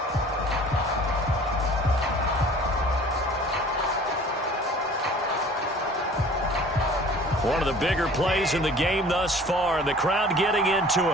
One of the bigger plays in the game thus far, and the crowd getting into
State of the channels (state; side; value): normal; both; correlation 0.47